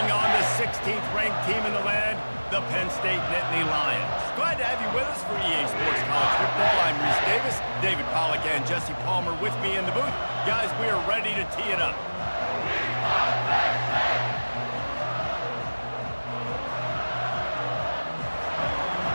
on the 16th ranked team in the land, the Penn State Nittany Lions. Glad to have you with us for EA Sports College Football. I'm Reese Davis, David Pollack and Jesse Palmer with me in the booth. Guys, we are ready to tee it up.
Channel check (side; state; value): both; inverted; correlation -1.00